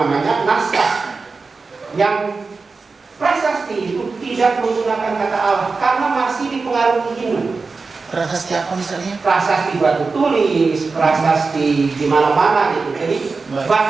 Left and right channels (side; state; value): left; quieter; 4.3 dB